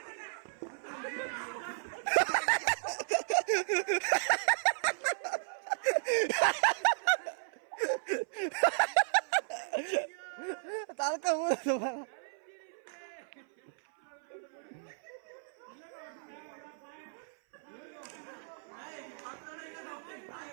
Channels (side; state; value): left; silent; 55 dB below the other